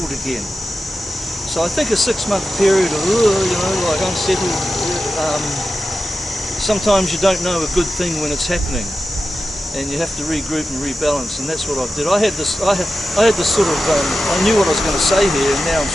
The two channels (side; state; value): both; normal; correlation 0.92